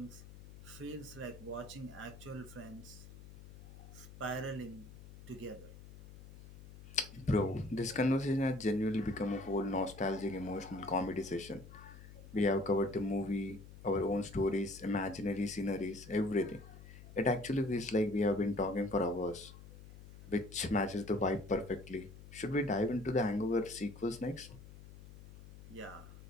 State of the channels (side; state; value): left; noise; hum, 17 dB below the sound